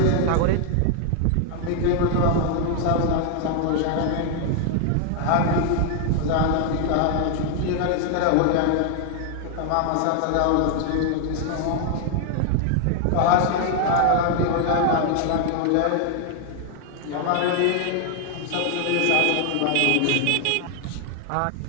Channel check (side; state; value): both; different; correlation 0.00